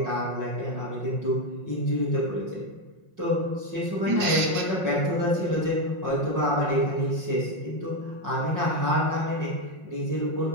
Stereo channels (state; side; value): late; left; 5.5 ms